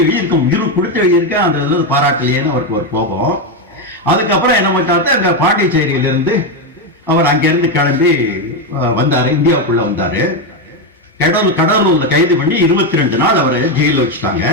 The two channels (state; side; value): normal; both; correlation 0.08